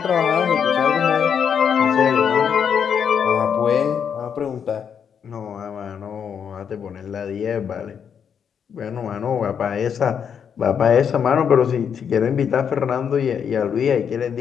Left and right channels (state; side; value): quieter; right; 7.5 dB